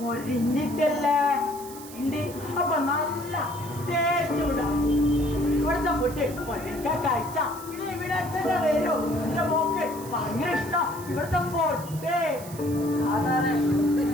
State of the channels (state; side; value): noise; right; hiss, 16 dB below the sound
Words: ഇണ്ട് അപ്പൊ നല്ല ടേസ്റ്റ് ഉണ്ടാവും. ഇവിടുത്തെ ഫുഡ് ഒരിക്കൽ കഴിച്ച ഇനി ഇവിടെ തന്നെ വരും. എന്റെ മോക്ക് ഭയങ്കര ഇഷ്ടം ഇവിടുത്തെ ഫുഡ്. ആ സാറേ.